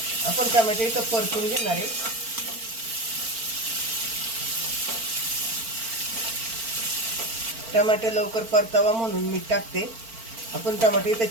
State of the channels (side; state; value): left; late; 4.4 ms